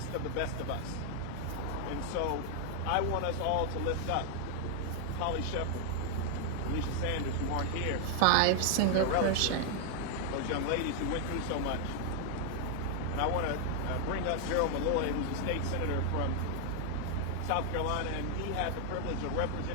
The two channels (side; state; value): both; different; correlation 0.00